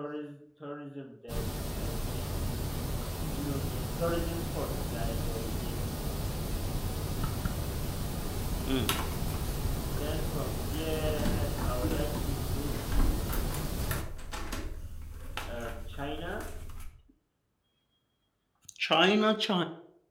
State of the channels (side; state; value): both; identical; correlation 1.00